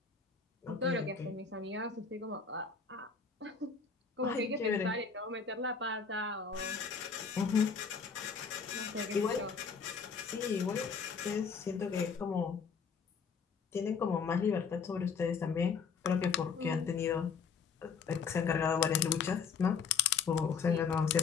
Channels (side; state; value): right; quieter; 5.8 dB